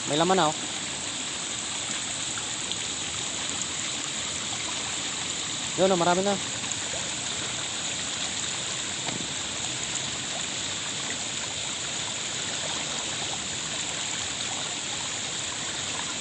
May laman na, oh. Yun, oh, marami na.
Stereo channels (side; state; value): both; identical; correlation 1.00